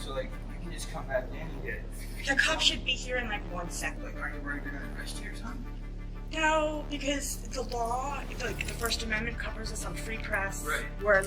So, like, you can just come back in and get it. The cop should be here in like 1 second. Like, aren't you worried they're gonna arrest you or something? No, because the law, like the First Amendment covers us on free press. Right. We're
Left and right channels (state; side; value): identical; both; correlation 1.00